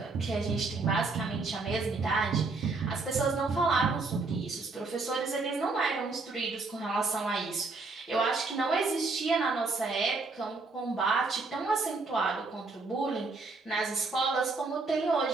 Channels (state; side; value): quieter; left; 3.8 dB